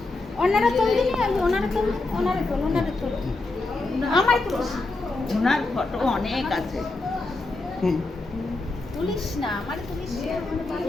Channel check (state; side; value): quieter; right; 3.2 dB